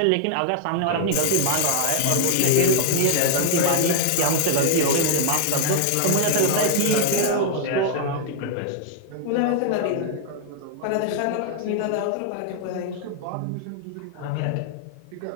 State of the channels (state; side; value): different; both; correlation 0.00